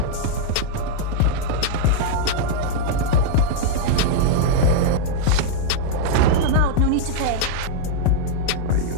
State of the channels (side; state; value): both; different; correlation -0.01